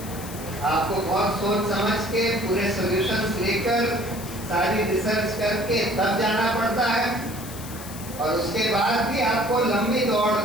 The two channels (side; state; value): left; noise; hiss, 14 dB below the sound